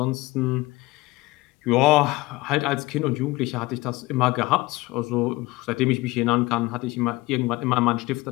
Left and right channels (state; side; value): quieter; right; 21.2 dB